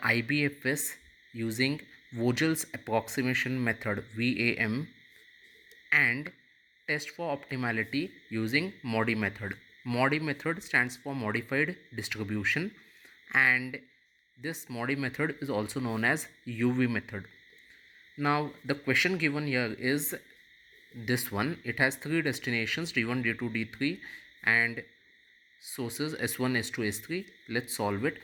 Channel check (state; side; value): identical; both; correlation 1.00